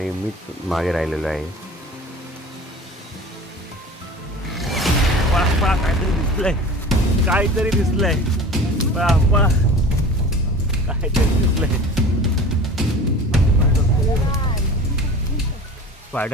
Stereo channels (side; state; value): both; normal; correlation 0.39